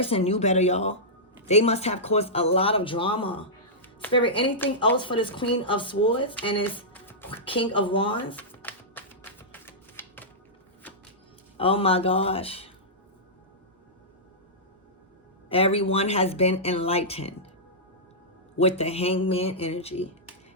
knew better, y'all. They must have caused a lot of drama. Spirit, anything else for this Queen of Swords and this King of Wands? Oh my gosh. Everyone has been enlightened with the Hangman energy.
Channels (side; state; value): both; normal; correlation -0.13